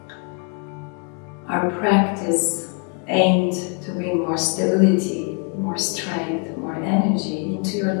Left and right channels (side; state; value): right; quieter; 36.5 dB